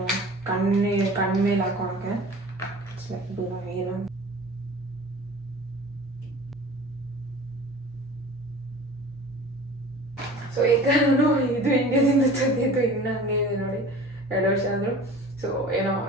ಕಣ್ಮೇಲೆ ಹಾಕೋಳಕ್ಕೆ ಏನು. ಸೊ ಈಗ ನಾನು ಇದು ಇಂಡಿಯಾದಿಂದ ತಂದಿದ್ದು ಇನ್ನೂ ಹಂಗೆ ಇದೆ ನೋಡಿ, 2 ವರ್ಷ ಆದರೂ. ಸೊ ಏನೋ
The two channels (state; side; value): normal; both; correlation 0.41